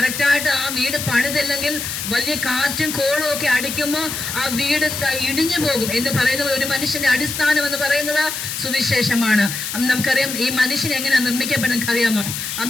ആ വീട് പണിതില്ലെങ്കിൽ വലിയ കാറ്റും കോളും ഒക്കെ അടിക്കുമ്പോൾ ആ വീട് ഇടിഞ്ഞു പോകും എന്ന് പറയുന്നത്. ഒരു മനുഷ്യന്റെ അടിസ്ഥാനം എന്ന് പറയുന്നത് സുവിശേഷമാണ്. നമുക്കറിയാം, ഈ മനുഷ്യൻ എങ്ങനെയാണ് നിർമ്മിക്കപ്പെടുന്നത് അറിയാമോ?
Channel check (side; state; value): left; noise; hiss, 5 dB below the sound